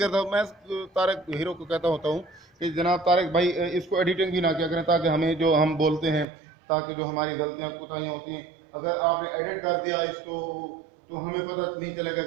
मैं तारक हीरो को कहता होता हूँ कि जनाब तारक भाई इसको एडिटिंग भी ना किया करें, ताकि हमें जो हम बोलते हैं, ताकि जो हमारी गलतियाँ कोताहियाँ होती हैं, अगर आपने एडिट कर दिया इसको तो हमें पता नहीं चलेगा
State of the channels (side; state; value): left; drops out; at 6.2 s